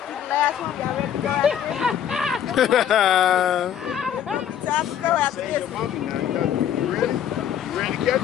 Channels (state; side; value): quieter; right; 9.7 dB